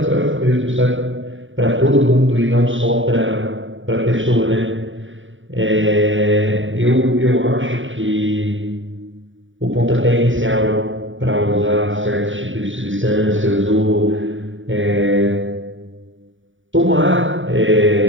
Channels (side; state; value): left; late; 0.56 ms